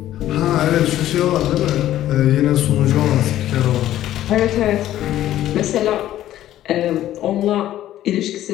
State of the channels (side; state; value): right; quieter; 13.1 dB